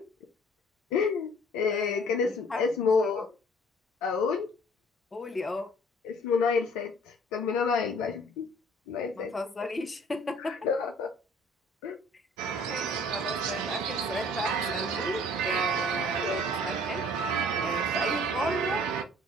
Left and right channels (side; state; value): both; normal; correlation 0.53